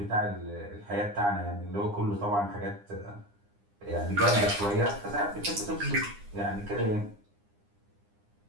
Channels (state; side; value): late; left; 9.8 ms